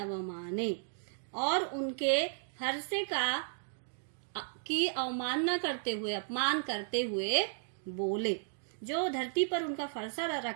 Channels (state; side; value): silent; left; digital silence